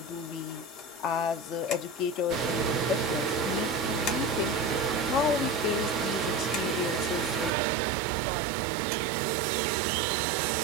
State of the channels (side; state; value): left; drops out; at 7.5 s